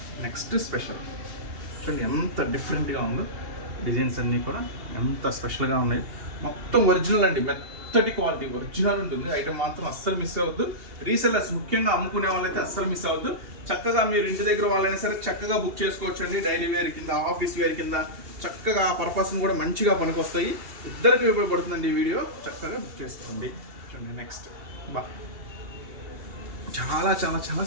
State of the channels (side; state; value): left; late; 2.8 ms